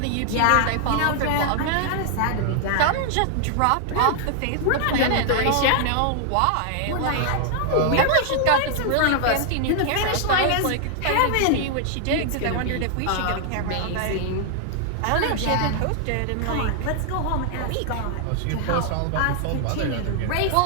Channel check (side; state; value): both; different; correlation 0.00